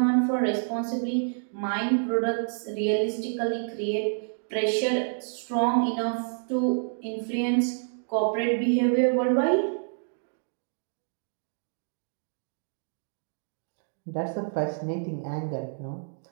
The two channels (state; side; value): silent; left; digital silence